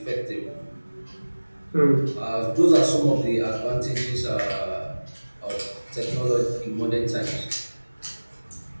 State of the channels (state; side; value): inverted; both; correlation -1.00